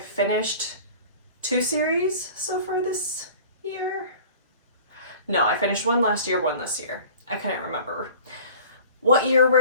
2 series so far this year. No, I finished one last year, one this year. I couldn't remember what year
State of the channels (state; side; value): inverted; both; correlation -0.44